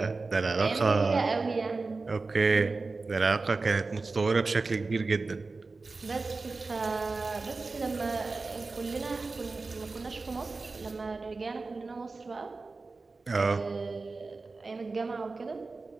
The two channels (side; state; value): left; quieter; 3.8 dB